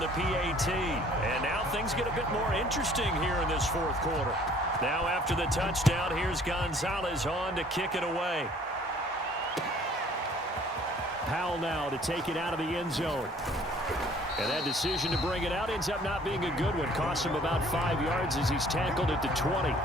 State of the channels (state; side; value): normal; both; correlation 0.55